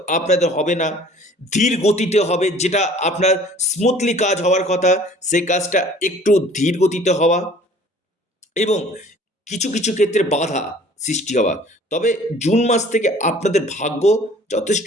আপনাদের হবে না, ধীর গতিতে হবে। যেটা আপনার স্মুথলি কাজ হওয়ার কথা, সেই কাজটা একটু ধীর গতিতে হওয়া এবং কিছু ক্ষেত্রে বাধা সৃষ্টি হওয়া। তবে জুন মাস থেকে আপনাদের ভাগ্য যথেষ্ট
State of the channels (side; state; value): both; normal; correlation 0.51